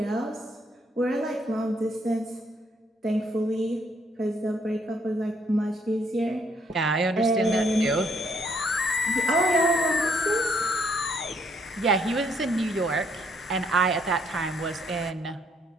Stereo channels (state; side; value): normal; both; correlation 0.69